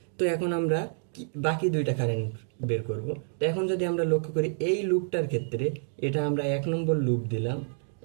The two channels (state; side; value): silent; left; digital silence